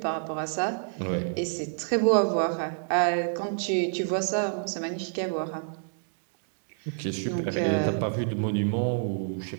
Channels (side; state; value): left; silent; digital silence